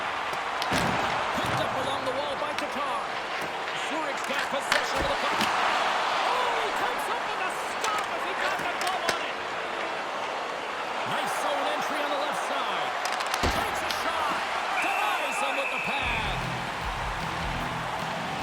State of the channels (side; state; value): both; identical; correlation 1.00